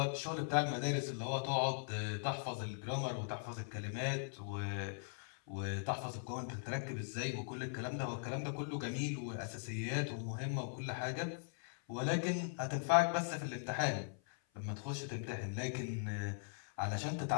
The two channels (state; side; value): silent; right; 51 dB below the other